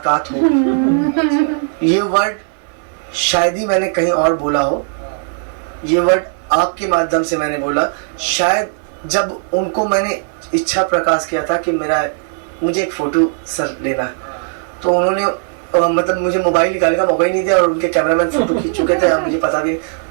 हो। ये वर्ड शायद ही मैंने कहीं और बोला हो, ये वर्ड आपके माध्यम से मैंने बोला। शायद जब उनको मैंने इच्छा प्रकाश किया था कि मुझे एक फोटो सर लेना है, तो उन्होंने मतलब मुझे मोबाइल निकालने का मौका ही नहीं दिया और उनके कैमरामैन फोटो खींच चुके थे, मुझे पता भी नहीं।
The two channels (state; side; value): silent; left; 68 dB below the other